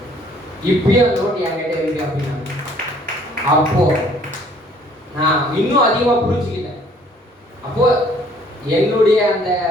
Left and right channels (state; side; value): normal; both; correlation 0.59